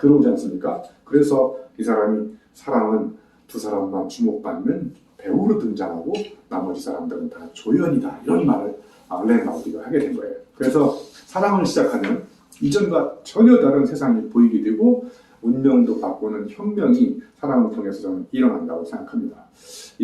들어오지 않습니까? 그래서 이 사람이 사랑은 두 사람만 주목받는 배우로 등장하고 나머지 사람들은 다 조연이다. 이런 말을 알렌 바우디가 하게 된 거예요. 그래서 사랑을 시작하면 이전과 전혀 다른 세상이 보이게 되고 운명도 바꾸는 혁명이 사랑을 통해서 저는 일어난다고 생각합니다.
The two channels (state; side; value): identical; both; correlation 1.00